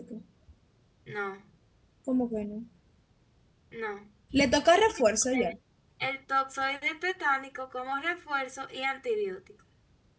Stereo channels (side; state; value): both; identical; correlation 1.00